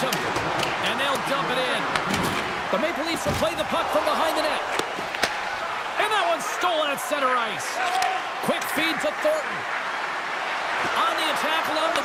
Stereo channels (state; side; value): identical; both; correlation 1.00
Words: And they'll dump it in. The Maple Leafs will play the puck from behind the net. And that one's stolen at center ice. Quick feed to Thornton. On the attack along